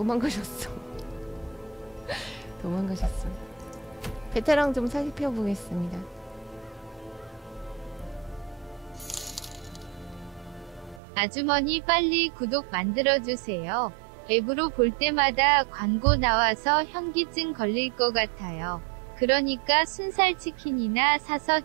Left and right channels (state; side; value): drops out; left; at 11.0 s